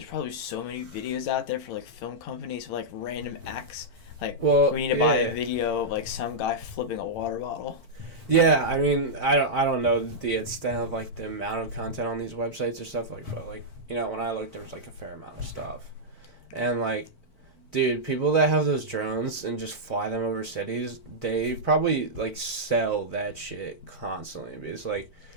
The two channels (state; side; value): late; right; 4.3 ms